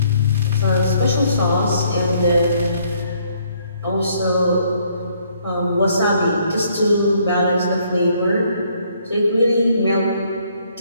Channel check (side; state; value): both; inverted; correlation -0.66